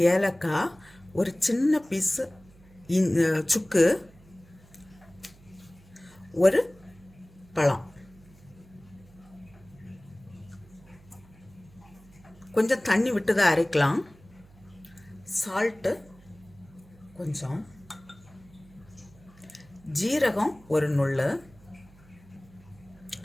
ஏலக்காய், ஒரு சின்ன பீஸு சுக்கு, ஒரு பழம், கொஞ்சம் தண்ணி விட்டு தான் அரைக்கலாம். சால்ட்டு கொஞ்சம், ஜீரகம் ஒரு நுள்ளு,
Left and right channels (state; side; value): noise; right; hum, 25 dB below the sound